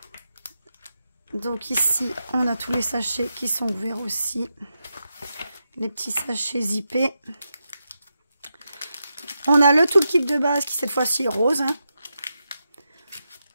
Donc ici, on a tous les sachets qui sont ouverts aussi. Les petits sachets zippés. On a le toolkit de base qui cette fois-ci est rose. Hein.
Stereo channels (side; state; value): both; inverted; correlation -0.87